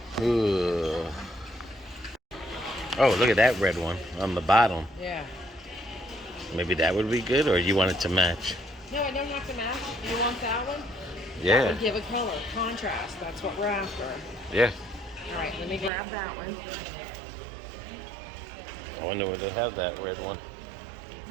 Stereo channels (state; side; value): drops out; left; at 15.9 s